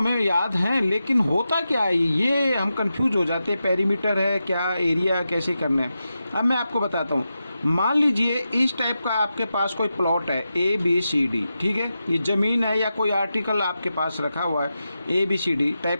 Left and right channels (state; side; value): inverted; both; correlation -0.89